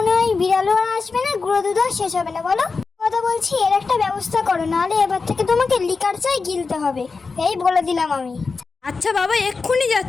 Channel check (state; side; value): quieter; right; 4.5 dB